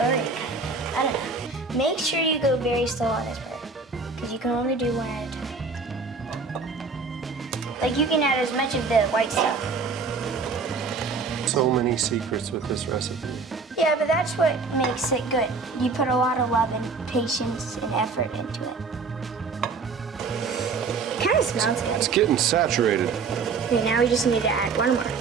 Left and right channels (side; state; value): left; quieter; 4.5 dB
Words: I don't know. Make sure you go very slow on this part, because you can only do 1 at a time. Like, you can add as much of the white stuff. So many secrets with this recipe. Yeah, but that's what makes it good. You put a lot of love and patience and effort into it. It kind of smells good. It's getting saturated. Okay, now we just need to add 1 more.